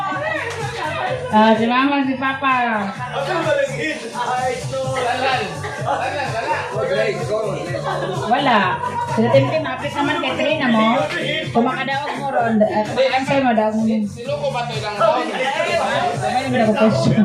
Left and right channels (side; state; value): both; identical; correlation 1.00